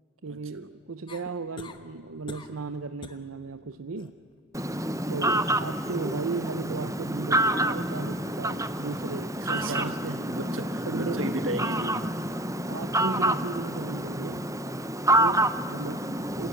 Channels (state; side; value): normal; both; correlation 0.38